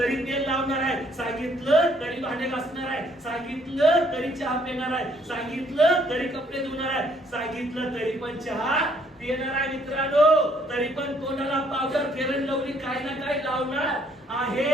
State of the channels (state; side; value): normal; both; correlation 0.65